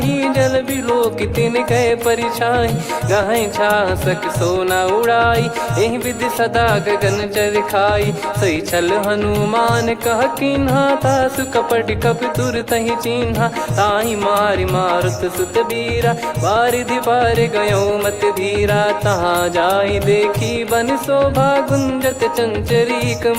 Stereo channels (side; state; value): both; identical; correlation 1.00